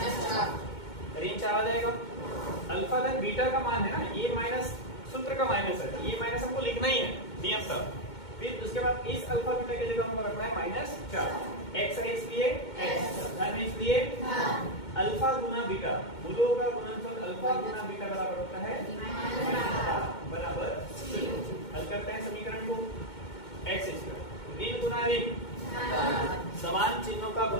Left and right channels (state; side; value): late; right; 2.2 ms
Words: ऋण 4 आ जाएगा। अल्फा धन बीटा का मान है ना, ये माइनस सूत्र का माइनस है, ये माइनस हमको लिखना ही है नियम था। फिर उसके बाद इस अल्फा बीटा की जगह हमको रखना है -4। x है इसलिए x, धन है इसलिए अल्फा गुना बीटा, मूलों का गुणनफल अल्फा गुना बीटा बराबर होता है बराबर 0। हल करते हैं समीकरण को, x², ऋण गुना ऋण समान चिन्हों का